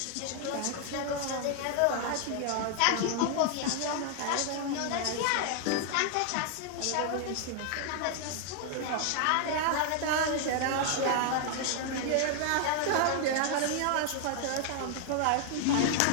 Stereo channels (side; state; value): both; different; correlation 0.00